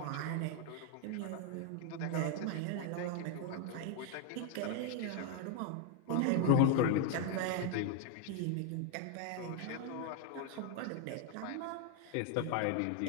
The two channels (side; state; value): both; different; correlation 0.00